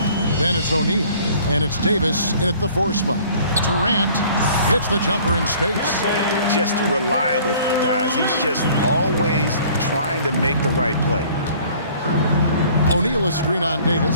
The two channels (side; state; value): both; inverted; correlation -0.53